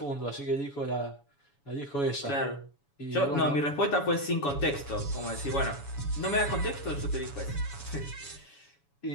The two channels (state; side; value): late; right; 7.1 ms